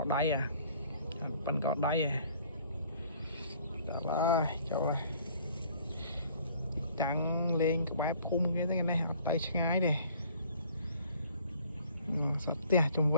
đáy à bắn cỏ đáy à chỗ đây trắng lên cái bãi phun cái này tay ngay đi sọt tia chung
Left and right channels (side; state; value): both; inverted; correlation -0.56